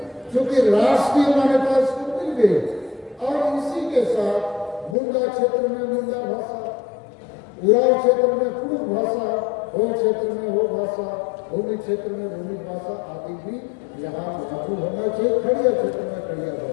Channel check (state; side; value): drops out; right; at 5.0 s